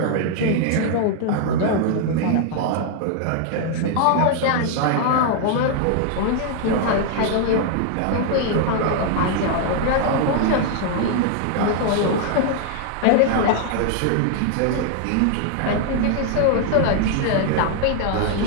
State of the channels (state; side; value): different; both; correlation 0.00